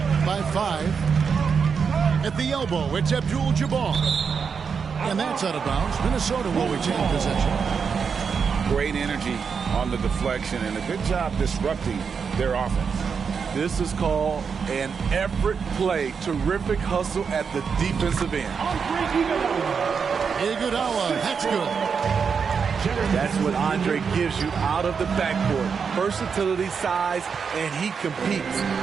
by 5. At the elbow, it's Abdul-Jabbar. And that's out of bounds. Minnesota will retain possession. Great energy on the deflection and a good job disrupting their offense. This is called an effort play. Terrific hustle at the defensive end. Iguodala, that's good. That's what Andre gives you out of the backcourt. Versatility, size, and he competes.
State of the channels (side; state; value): left; quieter; 6.1 dB